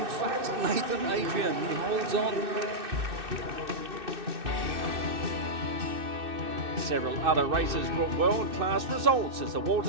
fact Nathan Adrian. He holds on. Several other races brought world-class results as the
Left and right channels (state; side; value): late; left; 2.6 ms